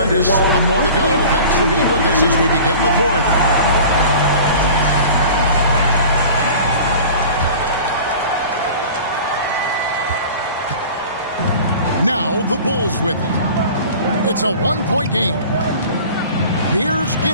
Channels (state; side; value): inverted; both; correlation -0.41